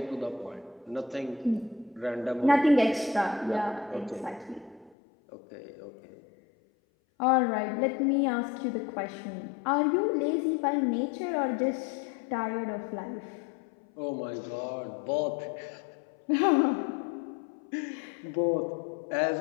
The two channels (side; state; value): right; drops out; at 5.0 s